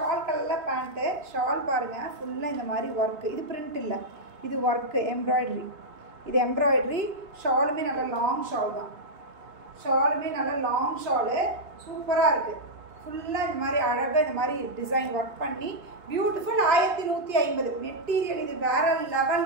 கலரில் பேண்ட்டு. ஷால் பாருங்கள் ஃபுல்லாக இந்த மாதிரி ஒர்க்கு, இது பிரிண்ட் இல்லை, இது ஒர்க்கு எம்ப்ராய்டரி, இது எம்ப்ராய்டரி. ஷாலுமே நல்ல லாங் ஷால் தான், ஷாலுமே நல்ல லாங் ஷாலு, சூப்பராக இருக்குது. ஃபுல்லாக இந்த மாதிரி அழகாக இந்த மாதிரி டிசைன் ஒர்க் பண்ணி பியூட்டிஃபுல். 1150 மெட்டீரியல், இது வேறு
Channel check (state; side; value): late; left; 2.9 ms